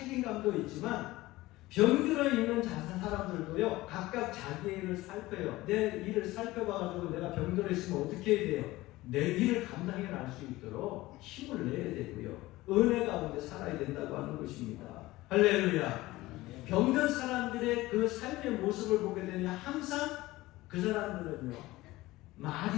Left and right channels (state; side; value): quieter; right; 18.5 dB